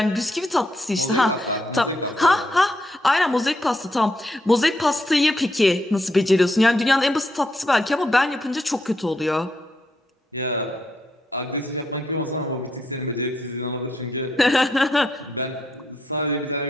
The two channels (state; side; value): normal; both; correlation 0.78